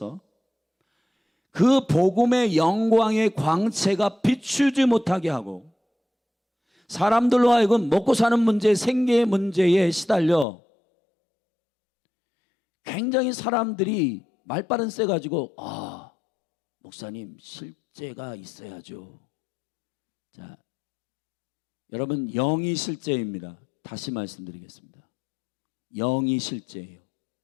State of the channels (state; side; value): drops out; right; at 10.5 s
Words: 그 복음의 영광의 광채가 비추지 못하게 하고 사람들로 하여금 먹고 사는 문제, 생계의 문제에 시달려 굉장히 사람들이 말바른 쎄 가지고 목사님 실제가 있어야죠. 자, 여러분 영이 실제입니다. 다시 말씀드리겠습니다. 영이 실제예요.